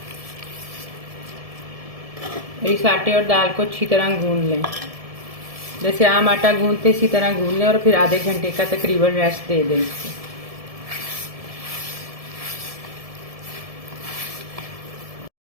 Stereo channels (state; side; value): late; left; 1.7 ms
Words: और इस आटे और दाल को अच्छी तरह गूंद लें, जैसे आम आटा गूंदते इसी तरह गूंद लें और फिर आधे घंटे का तकरीबन रेस्ट दे दें इसको।